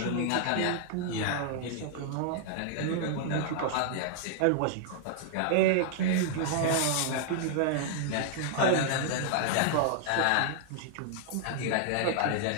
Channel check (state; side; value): different; both; correlation -0.01